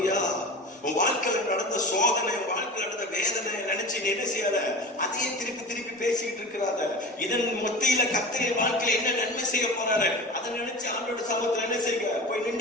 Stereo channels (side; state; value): both; normal; correlation 0.32